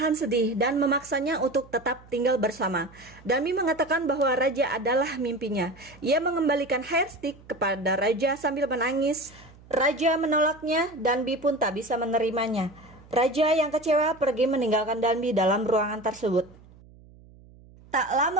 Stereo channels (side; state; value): right; noise; hum, 24 dB below the sound